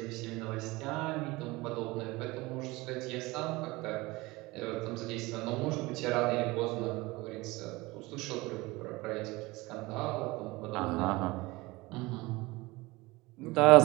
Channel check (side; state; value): left; quieter; 21.9 dB